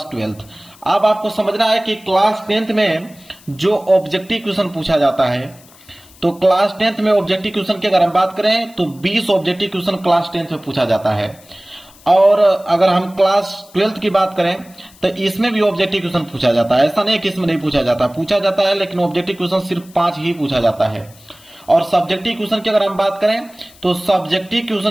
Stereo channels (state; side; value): noise; left; hiss, 25 dB below the sound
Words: 12th। अब आपको समझना है कि क्लास 10th में जो ऑब्जेक्टिव क्वेश्चन पूछा जाता है, तो क्लास 10th में ऑब्जेक्टिव क्वेश्चन की अगर हम बात करें तो 20 ऑब्जेक्टिव क्वेश्चन क्लास 10th में पूछा जाता है। और अगर हम क्लास 12th की बात करें तो इसमें भी ऑब्जेक्टिव क्वेश्चन पूछा जाता है। ऐसा नहीं कि इसमें नहीं पूछा जाता है, लेकिन ऑब्जेक्टिव क्वेश्चन सिर्फ 5 ही पूछा जाता है। और सब्जेक्टिव क्वेश्चन की अगर हम बात करें तो सब्जेक्टिव